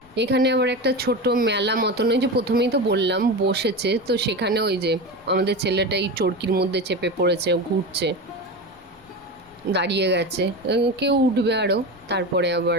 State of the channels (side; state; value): left; noise; rumble, 29 dB below the sound